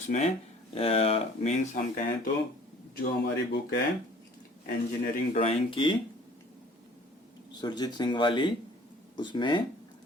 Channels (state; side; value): normal; both; correlation 0.51